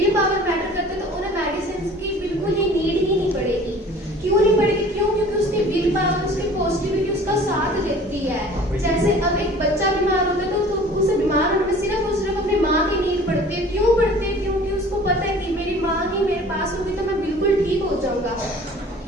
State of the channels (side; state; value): both; normal; correlation 0.46